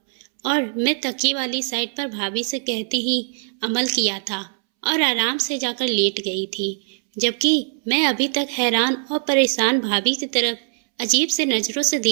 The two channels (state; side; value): silent; left; 64 dB below the other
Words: और मैं तकिए वाली साइड पर भाभी से कहते ही अमल किया था और आराम से जाकर लेट गई थी, जबकि मैं अभी तक हैरान और परेशान भाभी की तरफ अजीब से नजरों से